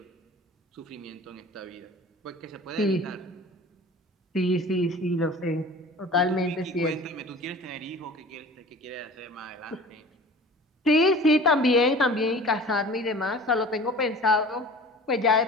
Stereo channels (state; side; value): normal; both; correlation 0.42